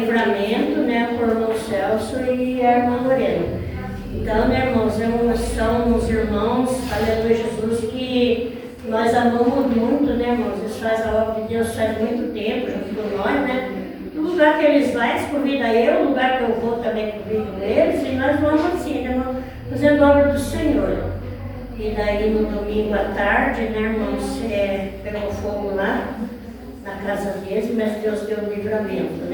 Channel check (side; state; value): both; identical; correlation 1.00